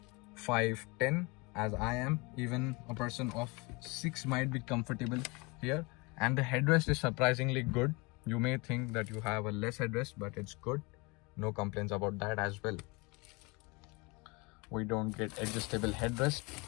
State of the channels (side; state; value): right; quieter; 26.5 dB